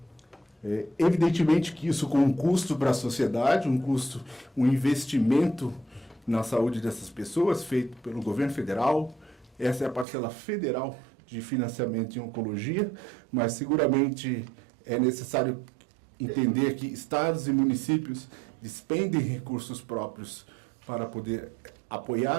Evidentemente que isso com um custo para a sociedade, um investimento na saúde dessas pessoas, feito pelo governo federal. Essa é a parcela federal de financiamento em oncologia, mas seguramente é necessário entender que estados e municípios despendem recursos próprios para poder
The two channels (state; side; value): drops out; left; at 10.1 s